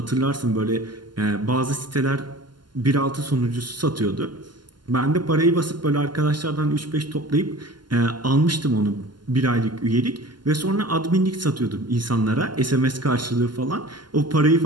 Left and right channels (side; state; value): left; late; 0.71 ms